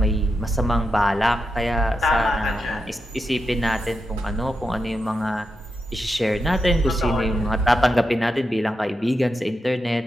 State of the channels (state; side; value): normal; both; correlation 0.87